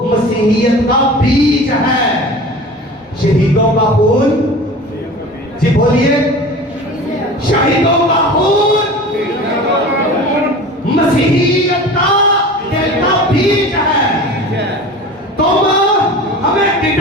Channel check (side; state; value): both; normal; correlation 0.37